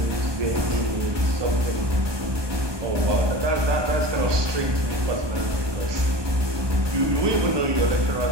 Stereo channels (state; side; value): late; left; 1.2 ms